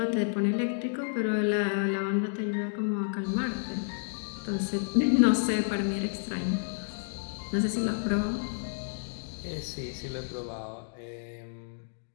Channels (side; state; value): right; silent; digital silence